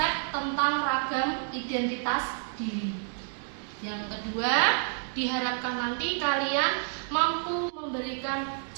tentang ragam identitas diri. Yang kedua, diharapkan nanti kalian mampu memberikan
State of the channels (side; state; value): left; silent; 58 dB below the other